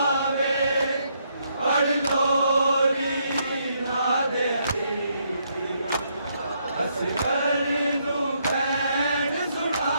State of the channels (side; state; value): both; inverted; correlation -0.75